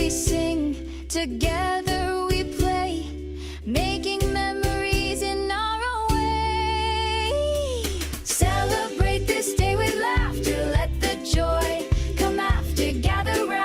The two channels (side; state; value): both; identical; correlation 1.00